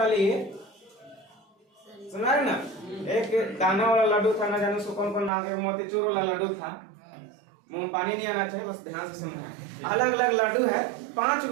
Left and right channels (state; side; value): drops out; left; at 5.3 s